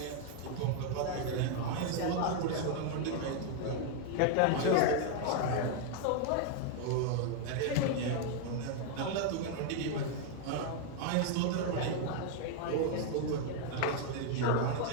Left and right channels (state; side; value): different; both; correlation 0.00